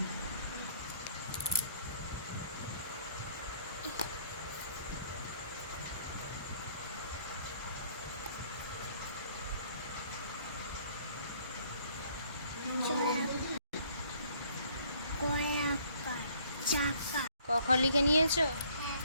কয়াকার চাকা ক লিখে নিয়েছো?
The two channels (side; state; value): both; inverted; correlation -0.61